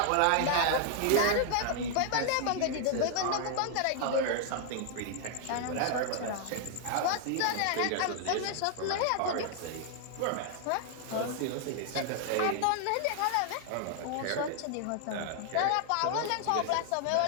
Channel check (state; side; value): different; both; correlation 0.00